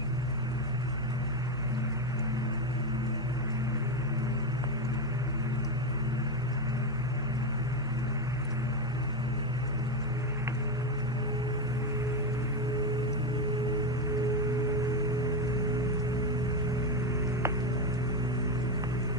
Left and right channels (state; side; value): noise; left; hum, 15 dB below the sound